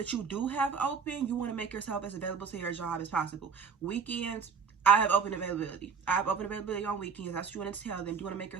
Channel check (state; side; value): quieter; left; 6.0 dB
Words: you do have open, you want to make yourself as available to your job as possible. Weekends, I have open availability. I have open availability on weekends. That's what you want to tell them. You want to make